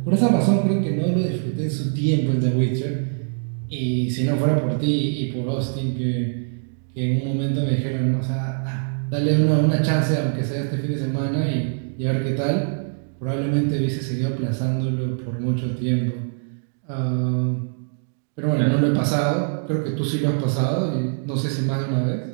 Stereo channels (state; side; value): silent; left; digital silence